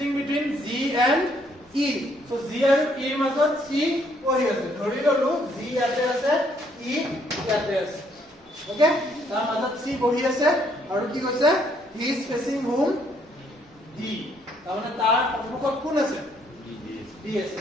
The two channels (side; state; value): both; normal; correlation 0.68